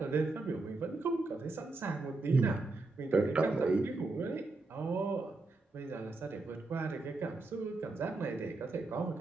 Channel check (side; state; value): left; quieter; 3.4 dB